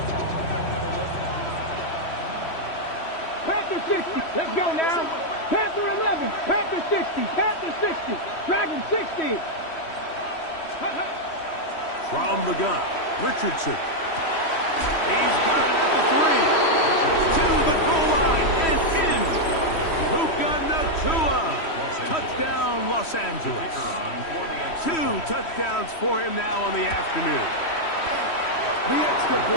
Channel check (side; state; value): right; late; 3.1 ms